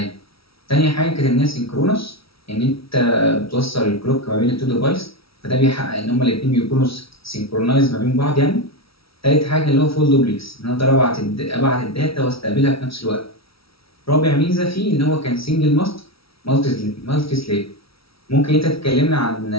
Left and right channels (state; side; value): late; right; 0.76 ms